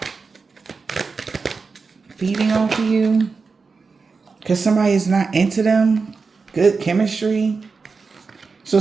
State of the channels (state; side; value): quieter; left; 4.6 dB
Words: Feeding off of you. Because somebody is not into them. Good chemistry. So